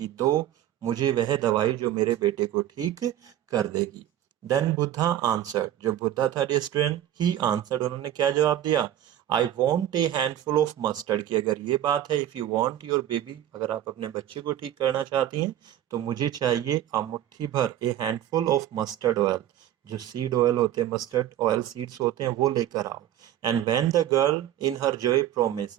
दो मुझे वह दवाई जो मेरे बेटे को ठीक कर देगी। देन बुद्धा आंसर्ड, जो बुद्धा था स्टूडेंट, ही आंसर्ड, उन्होंने क्या जवाब दिया, I want A handful of mustard, की अगर ये बात है, if you want your baby, अगर आप अपने बच्चे को ठीक करना चाहती हैं, तो मुझे चाहिए मुट्ठी भर, ए हैंडफुल ऑफ मस्टर्ड ऑयल, जो सीड ऑयल होते हैं, मस्टर्ड ऑयल सीड्स होते हैं, वो लेकर आओ। And when the girl in her Joy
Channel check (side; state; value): left; quieter; 11.9 dB